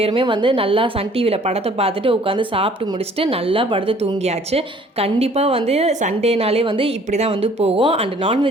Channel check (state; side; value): normal; both; correlation 0.56